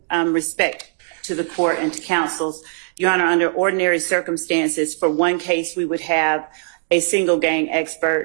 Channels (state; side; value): silent; left; digital silence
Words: respect to the court and to counsels, Your Honor, under ordinary circumstances, for one case, we would have a single gang